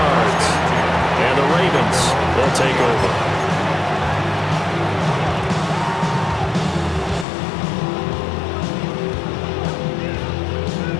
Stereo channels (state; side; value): drops out; right; at 7.2 s